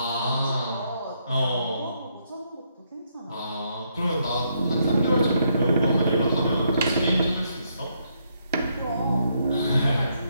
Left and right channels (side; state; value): both; inverted; correlation -0.75